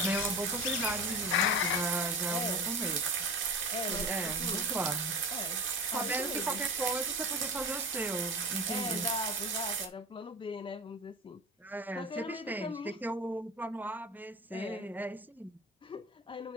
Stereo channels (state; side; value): normal; both; correlation 0.30